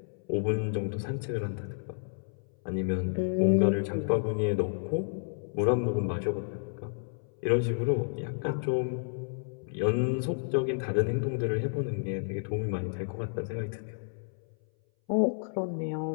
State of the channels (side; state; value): right; silent; 57 dB below the other